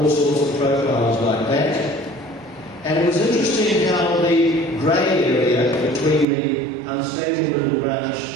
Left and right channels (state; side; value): drops out; left; at 6.2 s